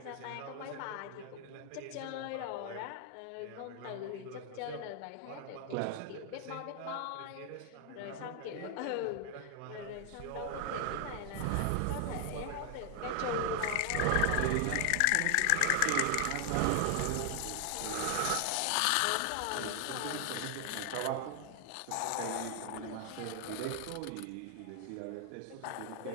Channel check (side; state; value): both; different; correlation 0.00